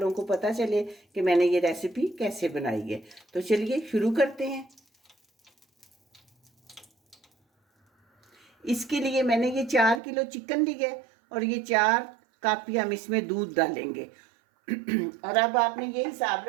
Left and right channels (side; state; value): left; drops out; at 10.0 s